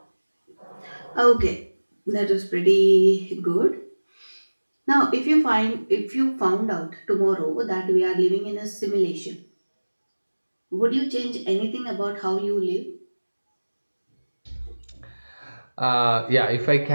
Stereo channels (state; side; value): inverted; both; correlation -1.00